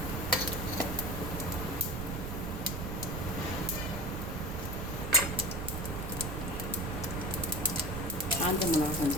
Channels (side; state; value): right; noise; rumble, 4 dB below the sound